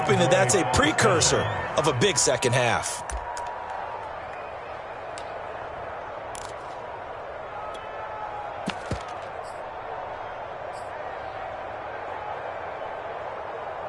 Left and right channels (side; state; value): both; identical; correlation 1.00